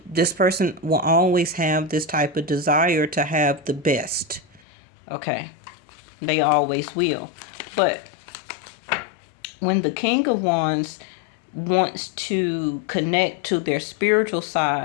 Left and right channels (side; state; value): right; drops out; at 4.6 s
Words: this person will always have this type of desire to have the best. Okay. They always will. But when the King of Wands wants to connect to their spiritual